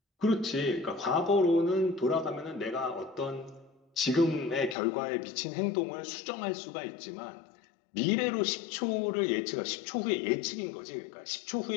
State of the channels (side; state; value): right; drops out; at 4.8 s